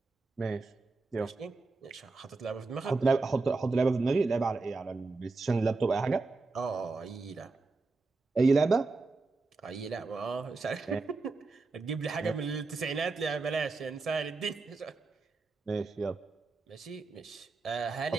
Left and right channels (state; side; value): quieter; left; 3.8 dB